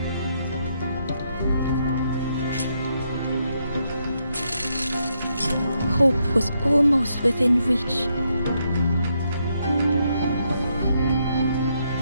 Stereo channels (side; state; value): both; inverted; correlation -0.78